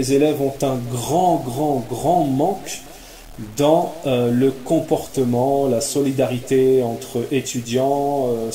élèves ont un grand manque dans le comportement, la solidarité entre étudiants,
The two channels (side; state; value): both; identical; correlation 1.00